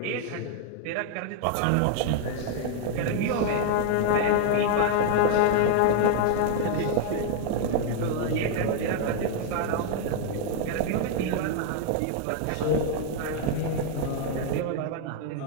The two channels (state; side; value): different; both; correlation 0.00